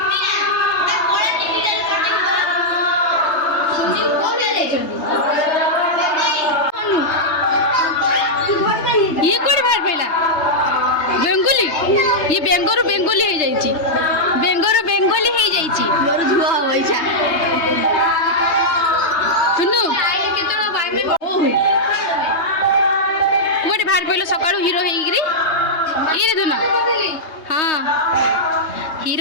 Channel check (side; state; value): right; late; 3.2 ms